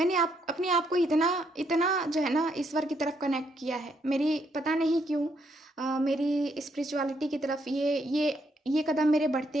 अपने आप को इतना इतना जो है ना ईश्वर की तरफ कनेक्ट किया है। मेरी पता नहीं क्यों मेरी स्पिरिचुअलिटी की तरफ ये कदम मेरे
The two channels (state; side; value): normal; both; correlation 0.74